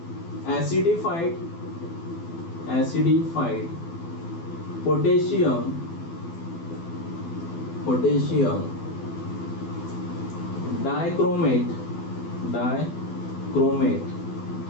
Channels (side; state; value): right; late; 12 ms